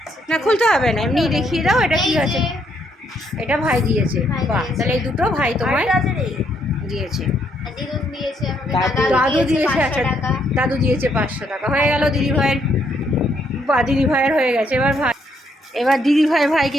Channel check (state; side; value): normal; both; correlation 0.73